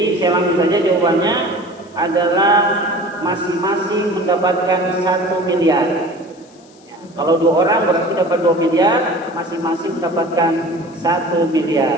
saya langsung saja jawabannya adalah masing-masing mendapatkan 1 miliar. Ya, kalau 2 orang berarti dapat 2 miliar, masing-masing mendapatkan 1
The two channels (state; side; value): noise; left; hiss, 29 dB below the sound